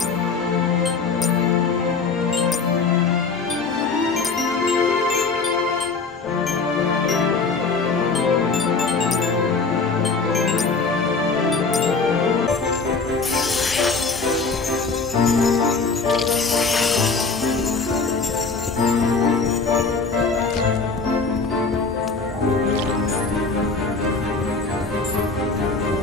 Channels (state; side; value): quieter; right; 4.4 dB